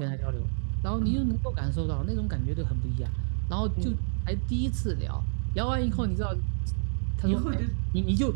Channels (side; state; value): left; silent; digital silence